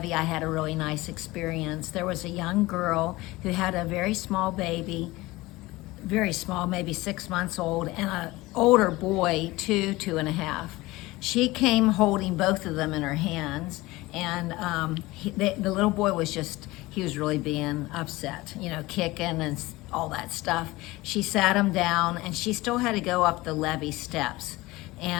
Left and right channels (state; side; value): quieter; right; 20.1 dB